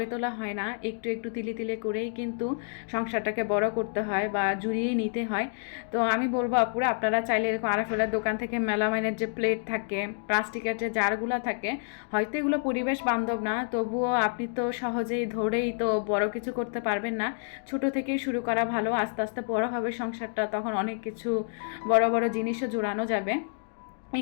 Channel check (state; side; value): silent; right; digital silence